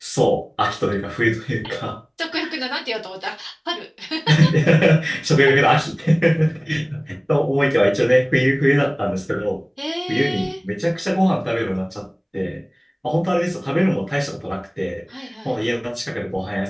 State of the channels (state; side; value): identical; both; correlation 1.00